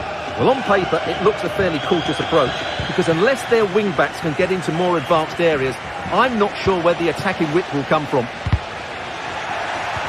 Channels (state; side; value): identical; both; correlation 1.00